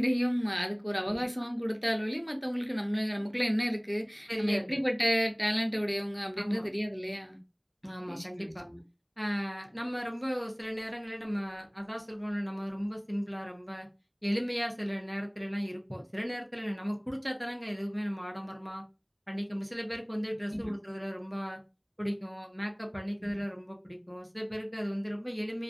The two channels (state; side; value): identical; both; correlation 1.00